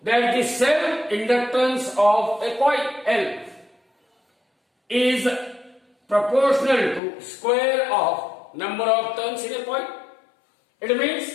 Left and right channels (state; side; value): drops out; right; at 7.0 s